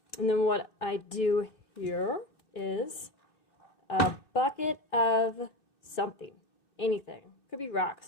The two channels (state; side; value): late; right; 2.6 ms